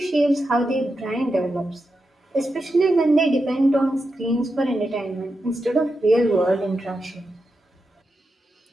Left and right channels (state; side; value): normal; both; correlation 0.88